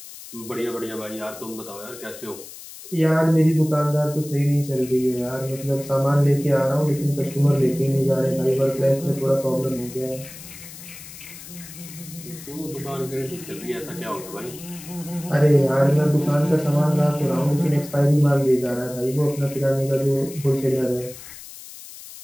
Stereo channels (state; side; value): noise; left; hiss, 15 dB below the sound